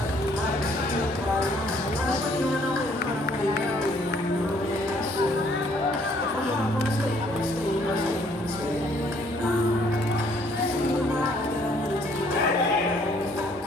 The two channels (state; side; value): normal; both; correlation 0.63